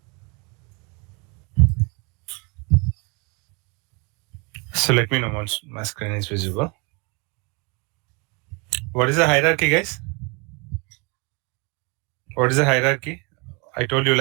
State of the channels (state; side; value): quieter; left; 30.8 dB